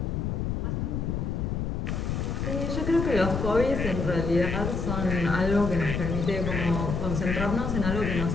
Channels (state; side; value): noise; left; rumble, 1 dB below the sound